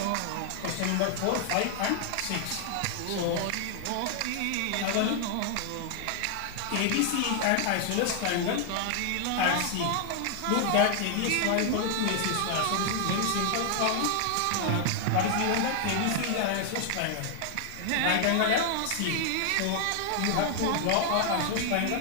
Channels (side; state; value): both; different; correlation 0.00